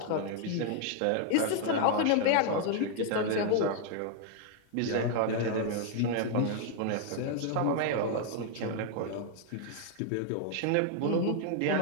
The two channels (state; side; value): different; both; correlation 0.00